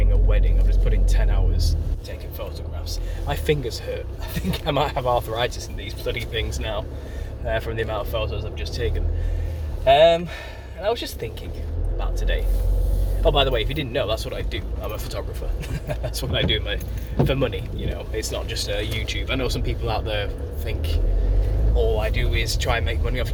a wedding. I've just put in 10 hours taking photographs. My fingers hurt. I think I might have arthritis in these bloody things now from the amount of photos I've just taken. And I was just thinking about today. Oh, by the way, if you didn't know, that's what I do. I'm a photographer. That's what I do for money, you know. It's not just YouTube. I know some people out there think all I do is try and make money off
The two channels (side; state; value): both; identical; correlation 1.00